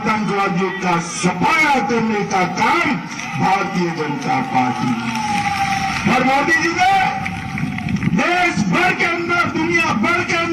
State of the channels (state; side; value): identical; both; correlation 1.00